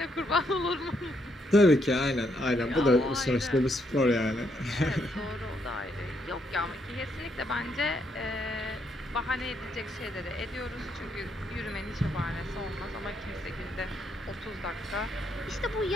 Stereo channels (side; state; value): both; normal; correlation 0.75